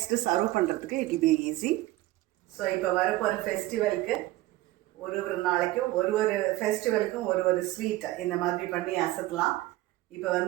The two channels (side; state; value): left; quieter; 17.4 dB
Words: சர்வ் பண்ணுறதுக்கு it will be easy. So இப்போ வரப்போகிற ஃபெஸ்டிவலுக்கு ஒரு நாளைக்கும் ஒரு ஃபெஸ்டிவலுக்கும் ஒரு ஸ்வீட் இந்த மாதிரி பண்ணி அசத்தலாம். இப்போ